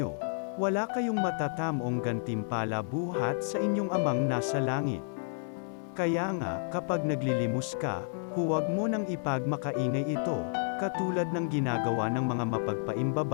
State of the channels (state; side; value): silent; right; digital silence